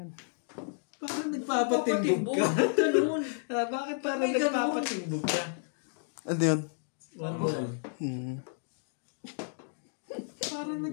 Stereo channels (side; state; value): right; silent; digital silence